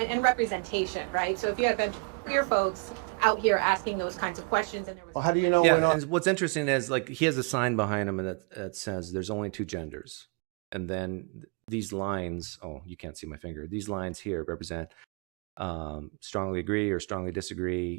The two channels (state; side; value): quieter; left; 33.6 dB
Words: and representation, right? So if you have been queer folks out here asking those kinds of questions, and there was Well, how do you know Yeah, we're not? and what's interesting is like he has a sign behind him that says there's only two genders. And then these lines, oh, you can't see my finger. These lines here represent strongly agree or strongly